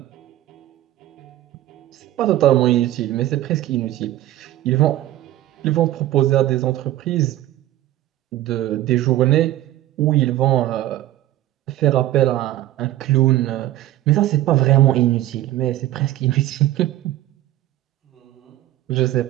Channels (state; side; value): quieter; left; 14.5 dB